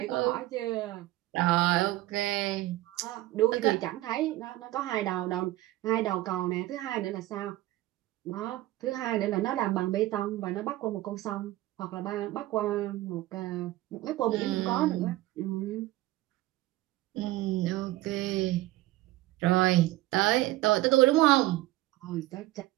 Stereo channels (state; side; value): quieter; left; 17.0 dB